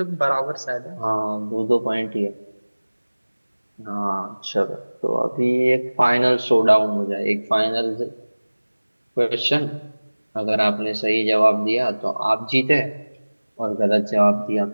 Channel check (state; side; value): inverted; both; correlation -1.00